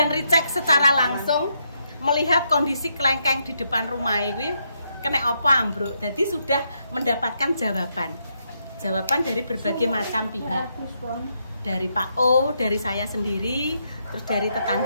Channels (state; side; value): inverted; both; correlation -0.79